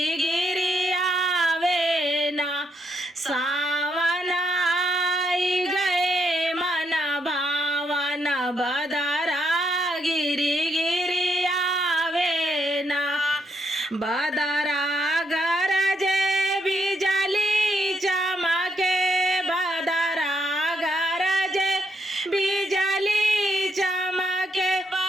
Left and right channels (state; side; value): normal; both; correlation 0.77